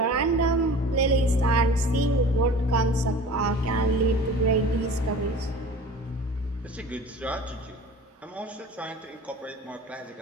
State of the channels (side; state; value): both; normal; correlation 0.41